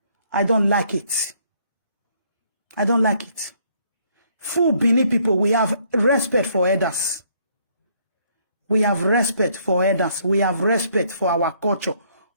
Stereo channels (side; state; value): both; inverted; correlation -0.66